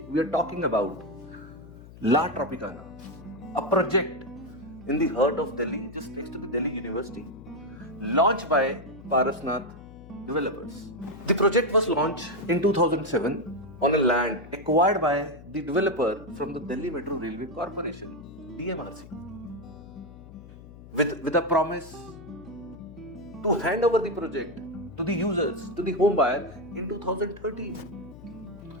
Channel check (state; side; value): noise; left; hum, 18 dB below the sound